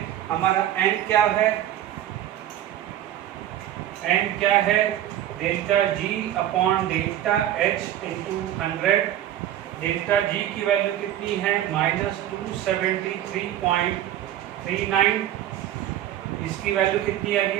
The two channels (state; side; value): quieter; left; 12.0 dB